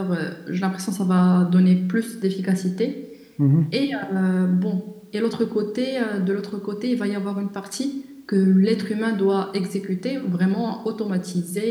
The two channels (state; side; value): identical; both; correlation 1.00